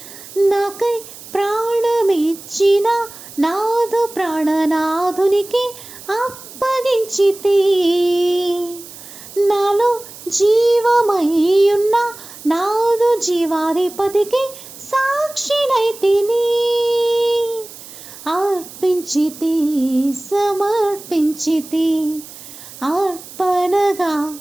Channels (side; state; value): right; noise; hiss, 16 dB below the sound